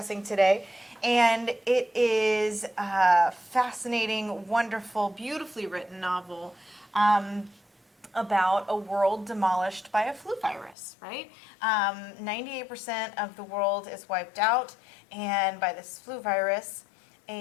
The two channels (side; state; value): right; drops out; at 10.8 s